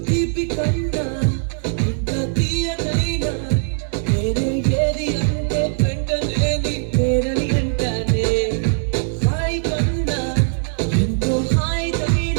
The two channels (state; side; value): silent; left; digital silence